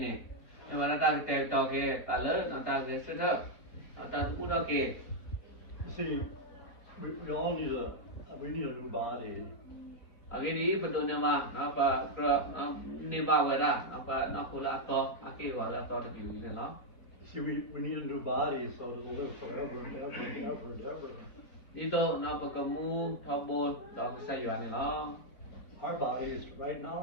ma ta te to ke ta le na ta ke se da ta mu do ke. You see, we all need a new body. Agi ni pa do na ma na pa na ni ba we da na pa na ko la to a ke wa la to de bi ni la. See, we need a new body so that it'll live forever and ever and ever and ever. Ito na pa ka mu tho bo da ke sa yua ni la. Our bodies right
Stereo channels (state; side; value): late; right; 4.4 ms